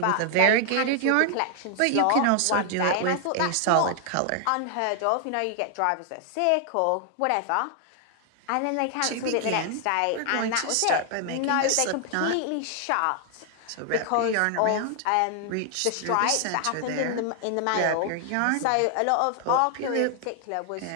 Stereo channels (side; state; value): both; different; correlation 0.00